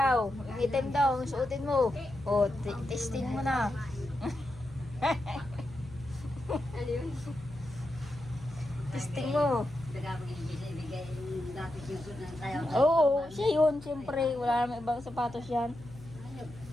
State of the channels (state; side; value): noise; left; hum, 18 dB below the sound